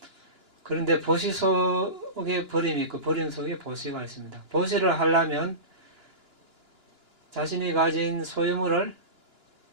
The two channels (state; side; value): late; left; 2.9 ms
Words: 그런데 보시 속에 버림이 있고 버림 속에 보시가 있습니다. 보시를 하려면 자신이 가진 소유물을